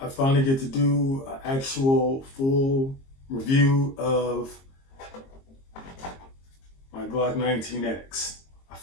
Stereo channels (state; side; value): late; right; 22 ms